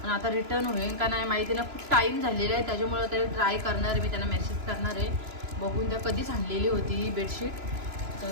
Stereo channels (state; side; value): late; left; 3.0 ms